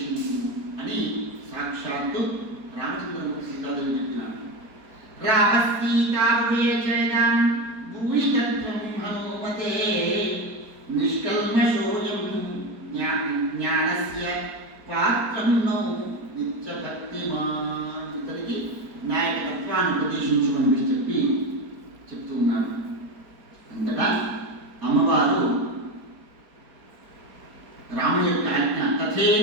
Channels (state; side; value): late; left; 4.6 ms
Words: అని సాక్షాత్తు రామచంద్రమూర్తి సీతాదేవి చెప్పినాడు. రామసీతాభేజం భూయితత్వం హనుమతే నిష్కల్మషోయం జ్ఞానస్య పాత్రం నో నిత్యభక్తిమాన్. ఇతనికి నా యొక్క తత్వాన్ని ఉపదేశించుకొని చెప్తూ ఉన్నాడు. అంతటా అమ్మవారు రాముడి యొక్క ఆజ్ఞ